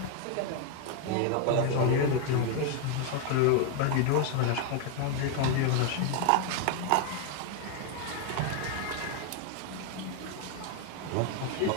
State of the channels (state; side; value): different; both; correlation 0.01